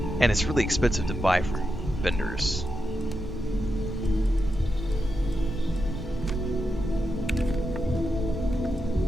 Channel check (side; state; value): both; normal; correlation 0.87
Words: And it's really expensive to buy from vendors.